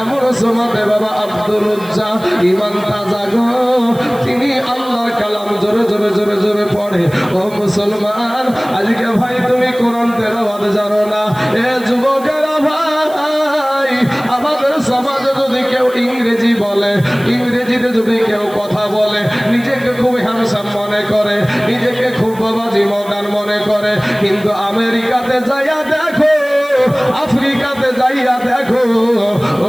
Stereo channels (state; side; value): noise; right; hiss, 21 dB below the sound